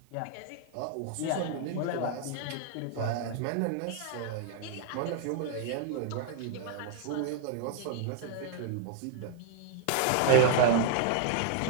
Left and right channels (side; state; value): both; different; correlation 0.00